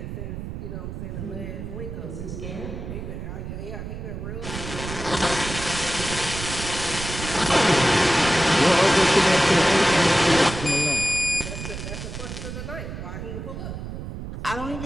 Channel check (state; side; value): noise; right; rumble, 8 dB below the sound